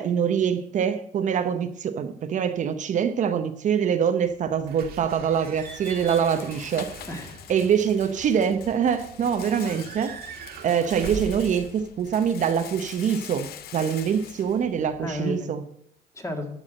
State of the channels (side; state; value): left; quieter; 7.0 dB